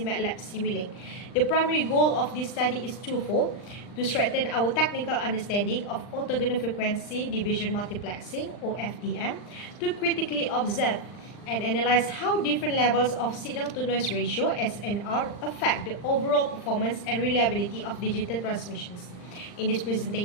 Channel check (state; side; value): late; right; 39 ms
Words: MATLAB Simulink. The primary goal of this study is twofold: to strengthen our technical understanding of orthogonal frequency division multiplexing (Ofdm), to critically observe and analyze how different levels of signal-to-noise ratio (SNR) affect the overall performance and reliability of digital transmissions. In this